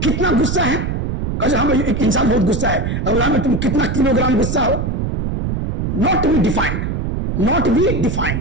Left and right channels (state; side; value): noise; right; rumble, 1 dB below the sound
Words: कितना गुस्सा है, हम एक इंसान बहुत गुस्सा है, अब तुम कितना किलोग्राम गुस्सा हो, not be defined, not be